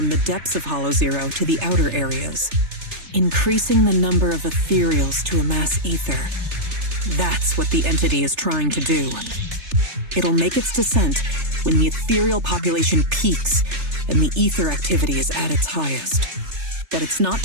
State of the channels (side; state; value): left; late; 3.3 ms